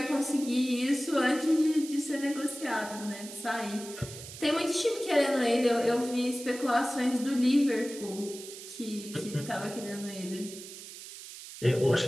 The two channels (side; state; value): right; noise; hiss, 13 dB below the sound